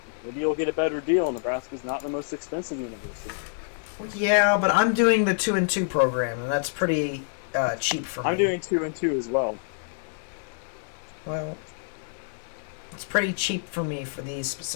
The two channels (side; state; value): right; silent; 60 dB below the other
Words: Maybe you'll get a better deal. Nebraska's not the most expensive university. Yeah, but I'm doing the 2-2 program, and that's pretty cheap for me. I'm doing 2-2 as well. Well, it's pretty cheap for me for these